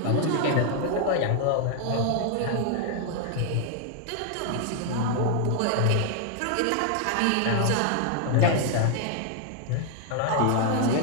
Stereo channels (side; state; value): both; different; correlation 0.00